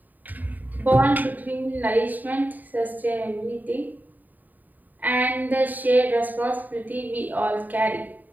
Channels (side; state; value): left; late; 0.086 ms